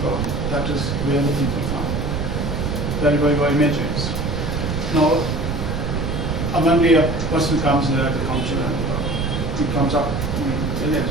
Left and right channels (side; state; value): right; noise; rumble, 2 dB below the sound